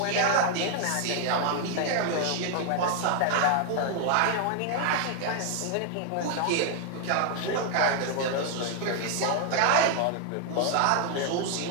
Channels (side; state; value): both; different; correlation 0.00